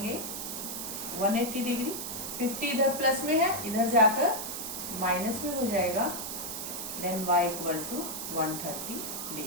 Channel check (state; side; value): noise; right; hiss, 5 dB below the sound